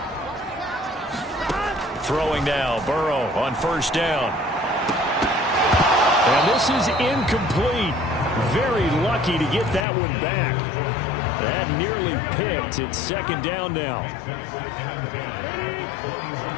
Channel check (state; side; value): drops out; right; at 9.9 s